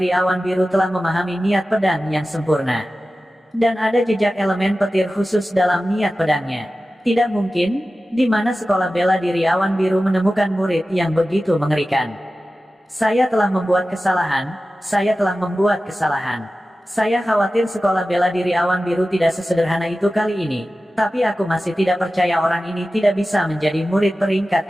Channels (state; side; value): normal; both; correlation 0.95